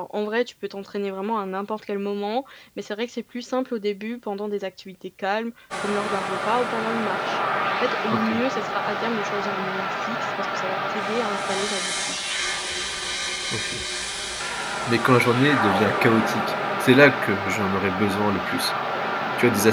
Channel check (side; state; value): both; identical; correlation 1.00